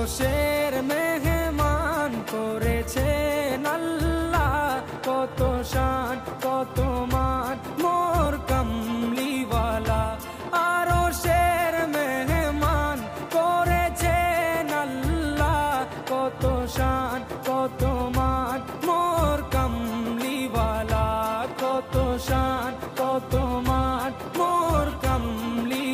মেহমান করেছেন আল্লাহ, কত শান কত মান মোর কামলিওয়ালা। আরশের মেহমান করেছেন আল্লাহ, কত শান কত মান মোর কামলিওয়ালা, কত শান কত মান মোর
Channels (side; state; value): both; identical; correlation 1.00